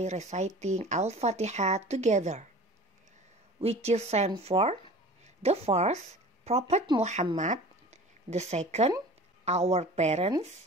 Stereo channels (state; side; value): normal; both; correlation 0.41